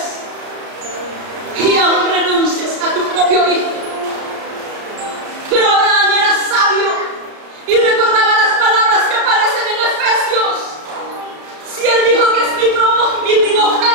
y aún renuncies a tu propio hijo. Pero Abraham era sabio y recordaba las palabras que aparecen en Efesios. Si él dijo que es mi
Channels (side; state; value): left; late; 33 ms